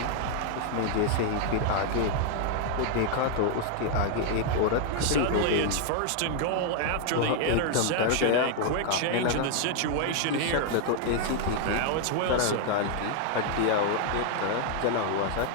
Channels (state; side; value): different; both; correlation 0.00